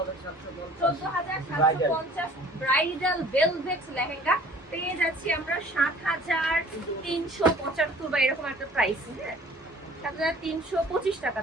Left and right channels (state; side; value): normal; both; correlation 0.51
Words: ব্রাইডাল ভেলভেট লেহেঙ্গা পেয়ে যাচ্ছি আমরা 7375 বা এরকম একটা প্রাইস। হ্যাঁ, 7325